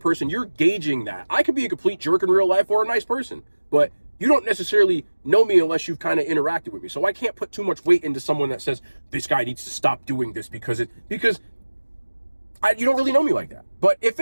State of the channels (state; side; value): inverted; both; correlation -1.00